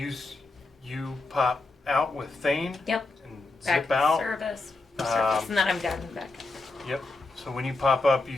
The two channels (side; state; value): right; quieter; 3.3 dB